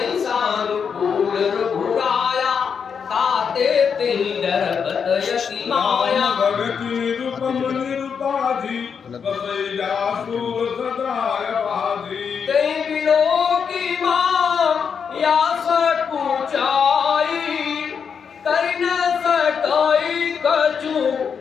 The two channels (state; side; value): quieter; right; 6.6 dB